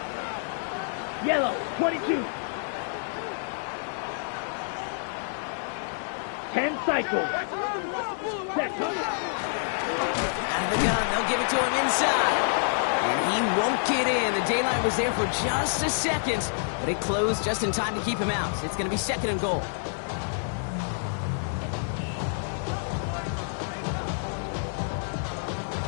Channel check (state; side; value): silent; right; digital silence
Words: Yellow, 22. 10 cycles. Set hut. Out of the gun, they'll give it to him inside. And he won't get in. The daylight was there for just a second, but it closed just in time to keep him out. It's going to be 2nd and goal.